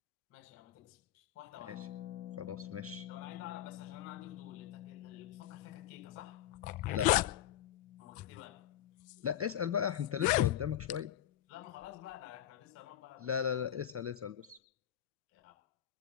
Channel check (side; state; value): right; quieter; 11.5 dB